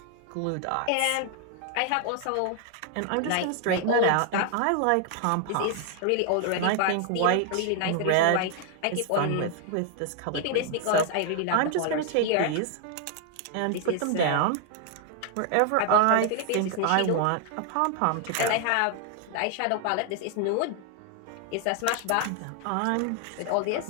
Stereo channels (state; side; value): different; both; correlation 0.00